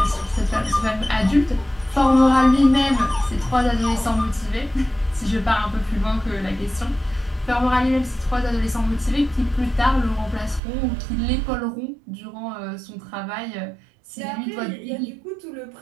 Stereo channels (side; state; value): left; drops out; at 10.6 s